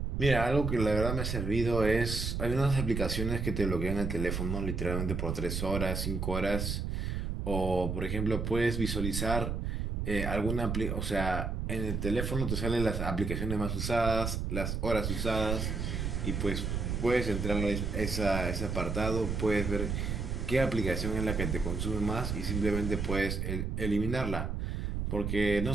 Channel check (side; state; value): right; noise; rumble, 2 dB below the sound